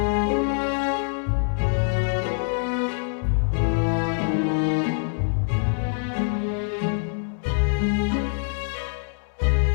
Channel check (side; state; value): right; silent; digital silence